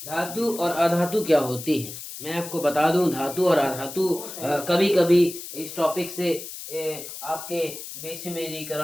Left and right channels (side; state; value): left; noise; hiss, 11 dB below the sound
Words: धातु और अधातु क्या होती है, मैं आपको बता दूं। धातु और अधातु कभी कभी इस टॉपिक से आपके